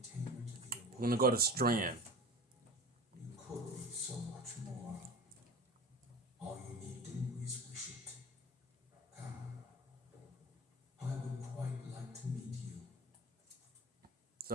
We're gonna go to Strand. You could be so much more. All you need do is wish it. Come. I would quite like to meet you.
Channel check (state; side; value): normal; both; correlation 0.35